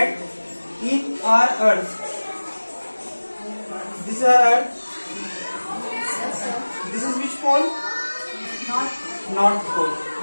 in our earth, this is our earth. This is which pole? North pole.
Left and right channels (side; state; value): both; inverted; correlation -1.00